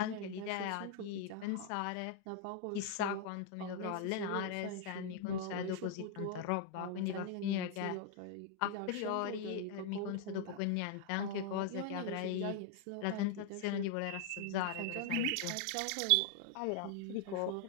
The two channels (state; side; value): different; both; correlation 0.00